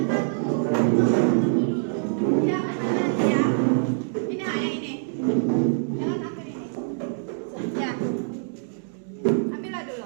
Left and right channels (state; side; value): silent; left; digital silence